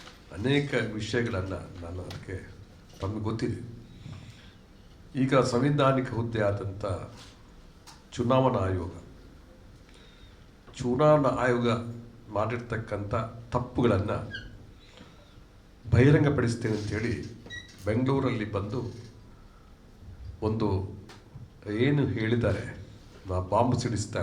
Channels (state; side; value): identical; both; correlation 1.00